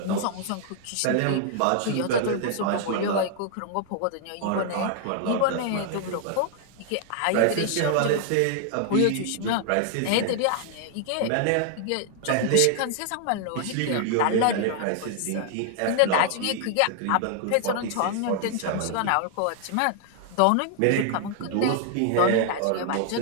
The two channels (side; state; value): both; different; correlation 0.00